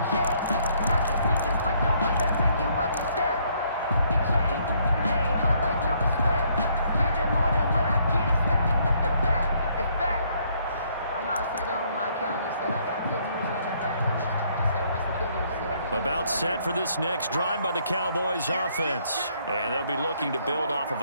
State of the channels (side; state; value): both; inverted; correlation -0.68